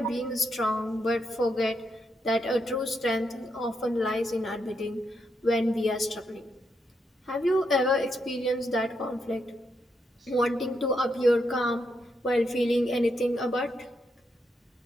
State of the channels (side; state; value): both; normal; correlation 0.81